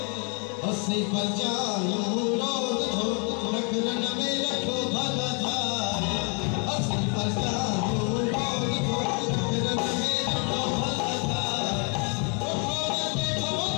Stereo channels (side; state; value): right; quieter; 37.3 dB